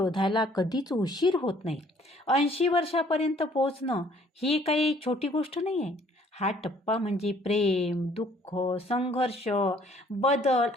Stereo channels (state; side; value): normal; both; correlation 0.60